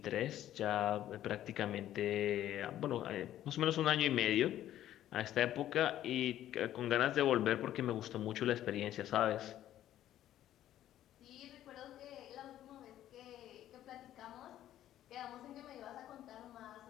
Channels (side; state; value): right; quieter; 12.4 dB